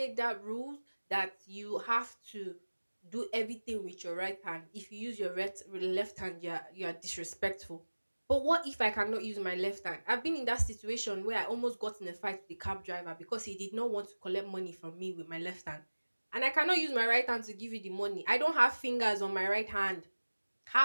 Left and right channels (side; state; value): both; inverted; correlation -1.00